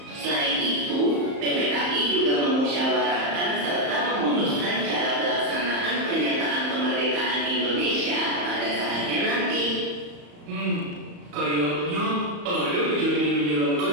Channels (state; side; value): late; left; 34 ms